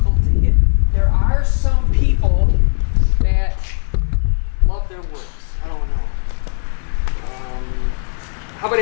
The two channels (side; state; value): right; silent; digital silence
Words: to hit. There are some people that love their woods. I don't know. How about